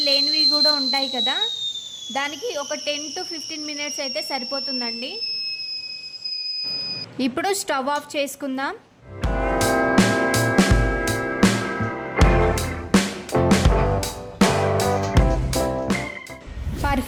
లేనివి కూడా ఉంటాయి కదా, దానికి ఒక 10 to 15 మినిట్స్ అయితే సరిపోతుందండి. ఇప్పుడు స్టవ్ ఆఫ్ చేసుకుందాం.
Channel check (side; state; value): both; identical; correlation 1.00